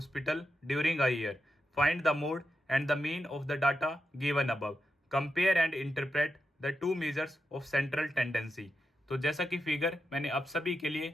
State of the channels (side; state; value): both; normal; correlation 0.87